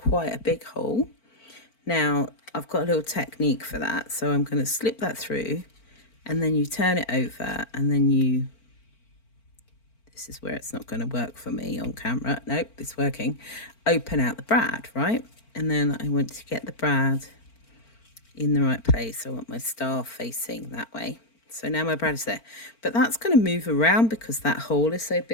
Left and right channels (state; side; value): late; right; 4.4 ms